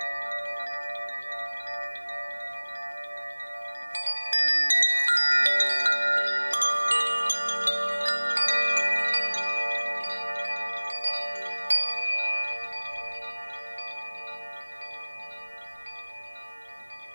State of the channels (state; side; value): inverted; both; correlation -1.00